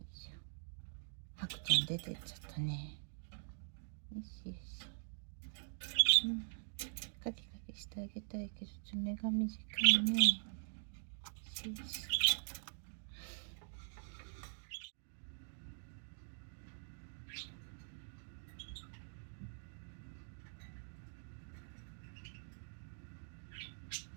いしょ。ハクちゃん出てっちゃったね。よしよし。うん。カキカキしてあげたいけど、爪が短いね。よしよし。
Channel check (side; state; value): left; silent; digital silence